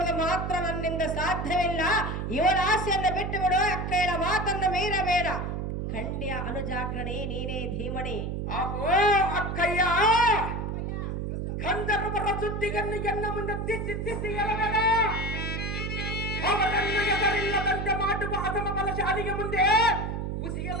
ಮಾತ್ರ ನನ್ನಿಂದ ಸಾಧ್ಯವಿಲ್ಲ. ಇವಳ ಆಸೆಯನ್ನು ಬಿಟ್ಟು ಬಿಡು. ಅಕ್ಕಯ್ಯಳ ಮಾತನ್ನು ಮೀರಬೇಡ. ಖಂಡ್ಯ ಅನುಜಾಗ್ರಣೆ ನೀನೇ ಧೀಮಣಿ. ಆಗೋ ಅಕ್ಕಯ್ಯ. ಗಂಧರ್ವರ ಸುದ್ದಿಗನ್ನು ಎನ್ನ ಮುಂದೆ ತಿದ್ದಿ ತಿದ್ದಿ ಹೇಳಬೇಡ. ಅವರನ್ನು ಎದರಿಲ್ಲದಂತೆ ಮಾಡುವ ಅಸಮ ಬಲಶಾಲಿಗೆ ಮುಂದೆ ಮುಸಿಯ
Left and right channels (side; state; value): right; noise; hum, 3 dB below the sound